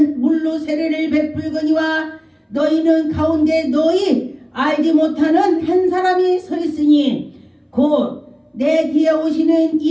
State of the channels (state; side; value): identical; both; correlation 1.00